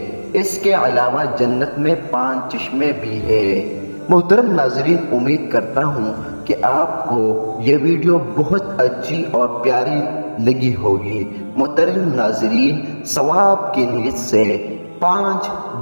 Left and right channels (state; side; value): inverted; both; correlation -1.00